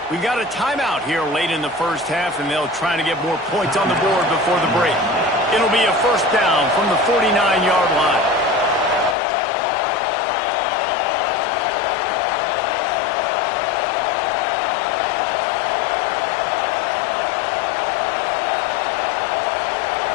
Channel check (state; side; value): drops out; right; at 9.2 s